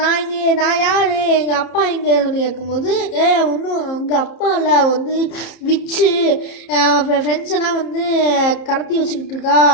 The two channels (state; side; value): late; right; 30 ms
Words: யார், எங்கள் அப்பா எங்கே சொல்லி கேட்கும்போது ஒன்றும் எங்கள் அப்பா இல்லை, வந்து விச்சு ஃப்ரெண்ட்ஸ் எல்லாம் வந்து கடத்தி வச்சுக்கிட்டு இருக்கா.